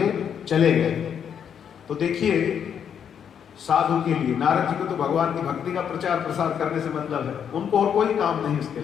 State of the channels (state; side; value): quieter; right; 8.1 dB